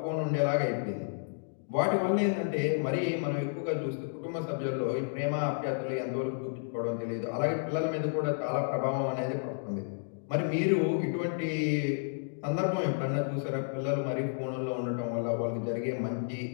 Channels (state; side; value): silent; right; digital silence